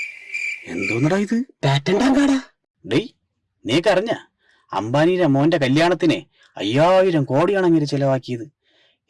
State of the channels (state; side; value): identical; both; correlation 1.00